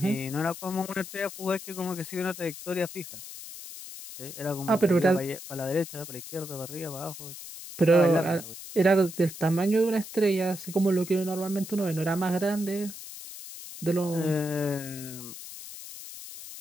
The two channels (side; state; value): left; noise; hiss, 12 dB below the sound